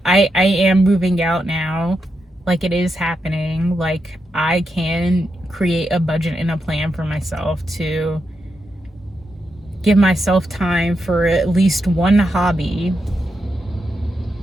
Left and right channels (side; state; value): both; normal; correlation 0.85